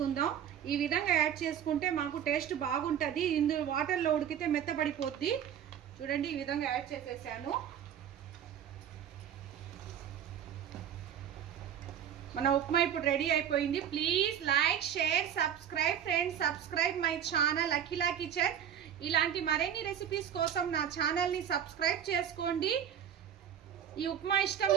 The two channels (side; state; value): left; quieter; 9.4 dB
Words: ఈ విధంగా యాడ్ చేసుకుంటే మాకు టేస్ట్ బాగుంటుంది. ఇందులో వాటర్లో ఉడికితే మెత్తబడిపోద్ది. చూడండి ఈ విధంగా యాడ్ చేసేసాను. మన ఉప్మా ఇప్పుడు రెడీ అయిపోయింది. Please like share subscribe friends. Subscribe my channel Akhila kitchen. ఇలాంటి మరిన్ని రెసిపీస్ కోసం నా ఛానల్ని సబ్స్క్రైబ్ చేసుకోండి. ఈ ఉప్మా ఇష్టం